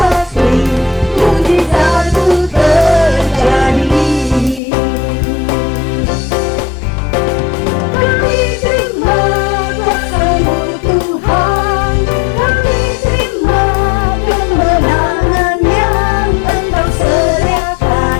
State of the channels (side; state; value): right; drops out; at 4.6 s